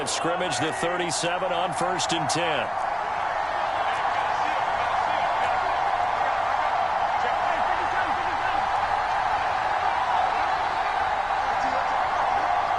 scrimmage, the 37 on 1st and 10.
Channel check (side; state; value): both; identical; correlation 1.00